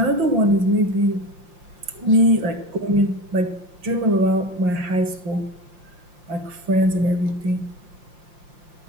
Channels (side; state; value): left; late; 5.7 ms